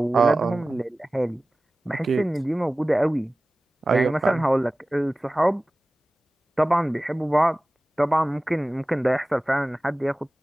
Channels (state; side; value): normal; both; correlation 0.97